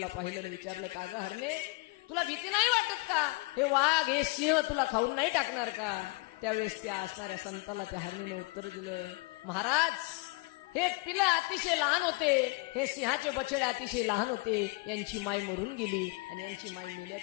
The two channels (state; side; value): quieter; right; 25.4 dB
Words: पाहिलं, विचारलं, का ग हरणे, तुला भीती नाही वाटत का? हे वाघ हे सिंह तुला खाऊन नाही टाकणार का? त्यावेळेस त्या असणाऱ्या संताला त्या हरणीने उत्तर दिलं, महाराज, हे तिला अतिशय लहान होते, हे सिंहाचे बछडे अतिशय लहान होते, यांची माय मरून गेली आणि यांची माय